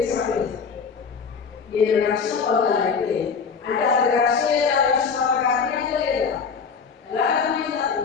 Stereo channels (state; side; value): quieter; right; 5.6 dB